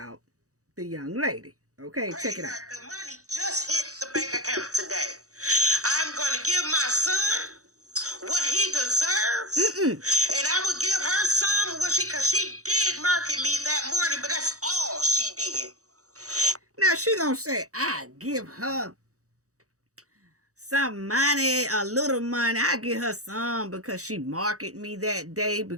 the young lady. Okay, check it out. The money just hit the bank account today. I'm going to give my son what he deserves. And I would give her some what because she did market me that morning, but that's all she did. Now she gonna say, I give her some money, a little money. I give her some because she marketed me that day.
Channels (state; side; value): late; left; 0.65 ms